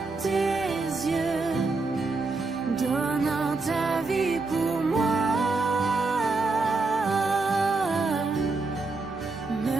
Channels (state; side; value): quieter; left; 3.7 dB